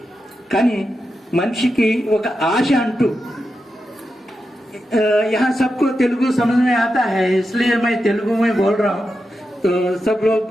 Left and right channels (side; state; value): both; normal; correlation 0.88